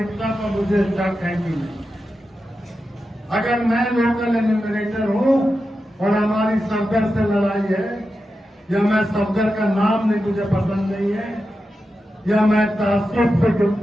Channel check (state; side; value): normal; both; correlation 0.90